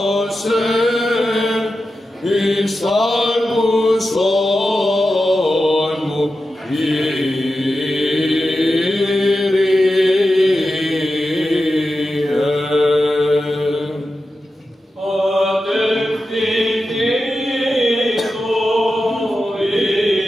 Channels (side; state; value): both; normal; correlation 0.91